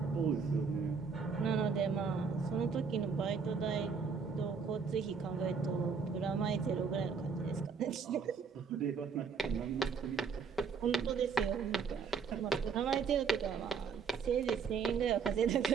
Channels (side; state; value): left; quieter; 5.5 dB